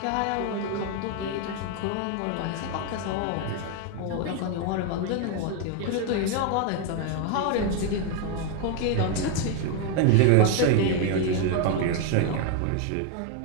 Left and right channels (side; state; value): both; different; correlation 0.01